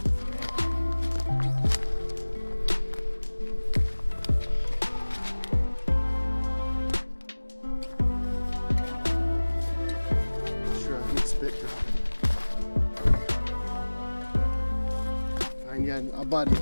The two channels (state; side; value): inverted; both; correlation -1.00